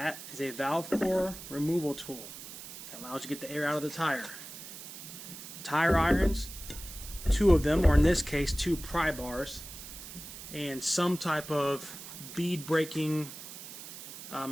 is a valve core removal tool that allows you to get the air out of the tire. Tire irons, 2 of them, or in this case 2 pry bars, and some type of bead breaking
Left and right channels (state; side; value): noise; right; hiss, 12 dB below the sound